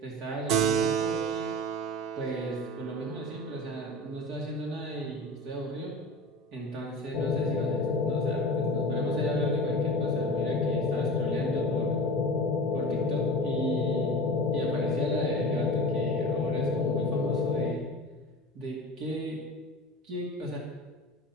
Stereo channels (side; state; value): both; normal; correlation 0.33